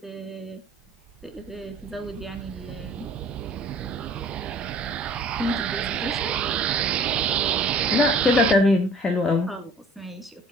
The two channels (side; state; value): both; normal; correlation 0.50